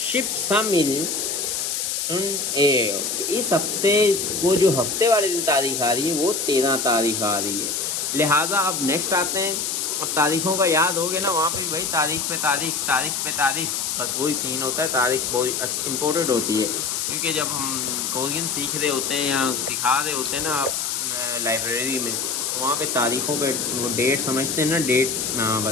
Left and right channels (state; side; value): noise; left; hiss, 1 dB below the sound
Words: इस हफ्ते को जो हफ्ते वाले दिन तारीख आ रही है वो 13 तारीख आ रही है। लिहाजा अब नेक्स्ट आते हैं। अब तारीखों का याद हो गया ना, वहाँ पे भाई तारीख पे तारीख, बस वही सीन होता है। तारीख बहुत इम्पोर्टेंट होती है, क्योंकि जब हम कोरियन सीख रहे होते हैं या सिखा रहे होते हैं ना आप लाइब्रेरी में, तो वहाँ पे तारीखों पे वो डेट समझते हैं ना,